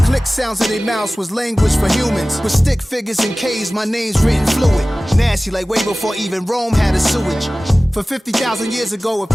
click sounds in their mouths was language for humans. With stick figures and K's, my name's written fluid. Nasty like way before even Rome had a sewage. For 50,000 years ago, if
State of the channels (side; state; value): both; normal; correlation 0.97